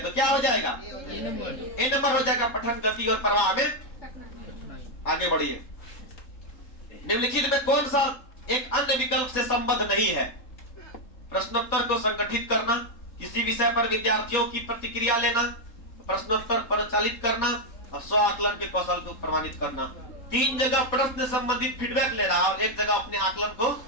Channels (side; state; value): right; late; 3.9 ms